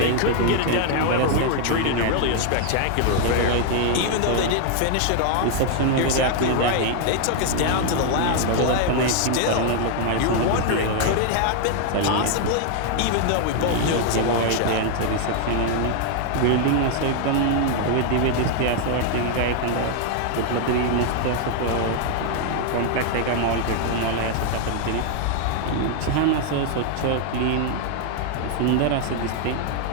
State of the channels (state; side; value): different; both; correlation 0.00